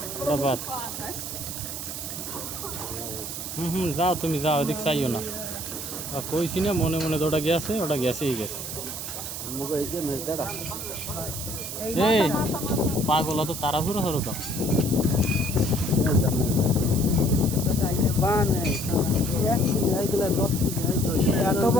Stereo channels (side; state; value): right; noise; hiss, 6 dB below the sound